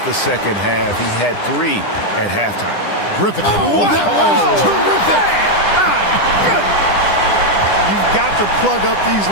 the second half. He had 3 at halftime. Griffin. Oh, that was terrific. My goodness. You've got to plug up these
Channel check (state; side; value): late; right; 9.9 ms